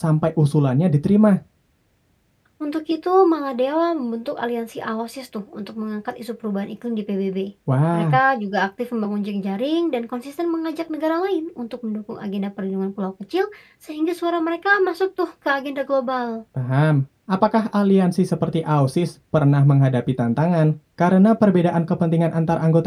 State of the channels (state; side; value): identical; both; correlation 1.00